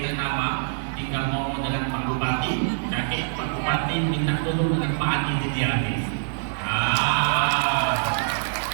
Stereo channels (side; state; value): left; silent; 62 dB below the other